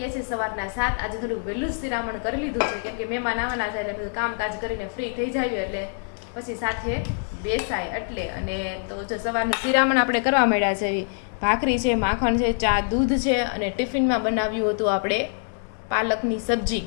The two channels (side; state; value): right; silent; 61 dB below the other